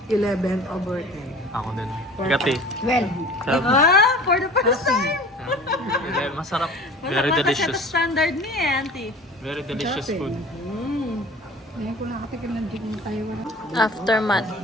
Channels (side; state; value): both; normal; correlation 0.42